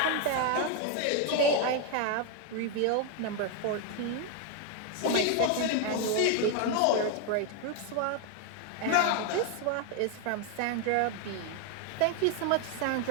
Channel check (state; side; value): different; both; correlation 0.01